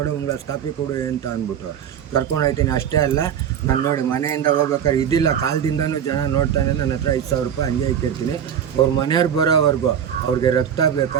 ಒಂದು ಗ್ಲಾಸ್ ಕಾಫಿ ಕೊಡು ಅಂತ ಅಂದ್ಬಿಟ್ಟು ಕರ್ಕೊಂಡು ಹೋಗ್ತೀನಿ. ಅಷ್ಟೇ ಅಲ್ಲ, ನಾನು ನೋಡಿ ಮನೆಯಿಂದ ಹೋಗ್ಬೇಕಾದ್ರೆ ಇದಿಲ್ಲ, ಕಾಲದಿಂದನೂ ಜನ ನೋಡ್ತಾನೆ ನನ್ನ ಹತ್ರ 5,000 ರೂಪಾಯಿ ಹಂಗೆ ಇಕ್ಕಿರ್ತೀನಿ. ಅವ್ರ ಮನೆಯವ್ರು ಬರೋವರೆಗೂ ಅವ್ರಿಗೆ ರಕ್ತ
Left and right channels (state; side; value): quieter; left; 8.9 dB